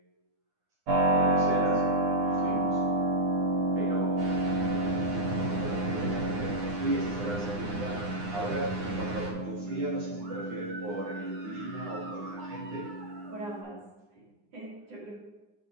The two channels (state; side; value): late; left; 9.8 ms